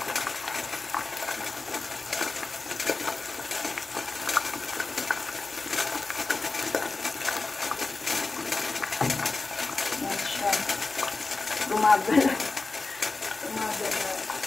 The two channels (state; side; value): quieter; right; 3.7 dB